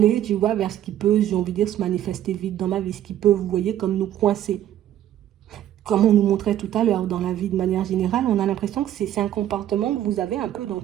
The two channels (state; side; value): quieter; left; 11.8 dB